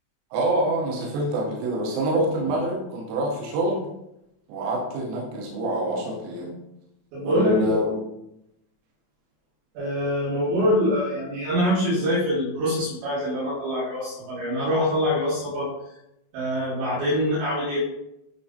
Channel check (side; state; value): left; late; 27 ms